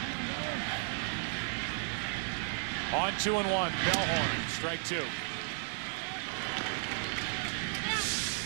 On 2-1, Bellhorn, strike two.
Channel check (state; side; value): silent; left; digital silence